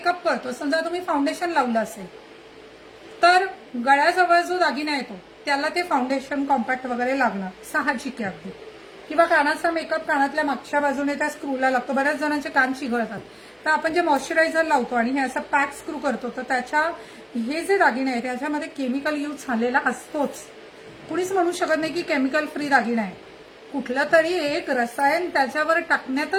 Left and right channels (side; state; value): both; identical; correlation 1.00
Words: करतो, समजा तुम्ही फाउंडेशन लावलं असेल तर गळ्याजवळ जो दागिना येतो त्याला ते फाउंडेशन कॉम्पॅक्ट वगैरे लागणार, साहजिक आहे अगदी. किंवा कानाचा मेकअप कानातल्या मागच्या बाजूने त्या स्क्रूला लागतो. बऱ्याच जणांचे कान चिघळतात, तर आपण जे मॉइश्चरायझर लावतो आणि हे असं पॅक स्क्रू करतो, तर त्याच्या हे जे दागिने आहे त्याच्यामध्ये केमिकल यूज झालेला असतोच. कुणीच म्हणू शकत नाही की केमिकल फ्री दागिना आहे. कुठलं तरी एक रसायन त्याच्यावर